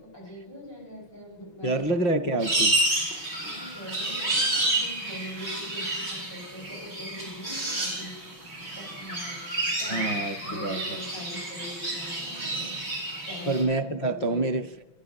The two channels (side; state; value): right; late; 6.1 ms